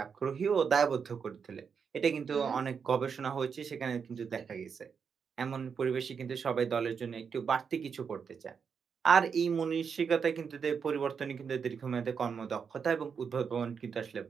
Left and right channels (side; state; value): left; quieter; 6.3 dB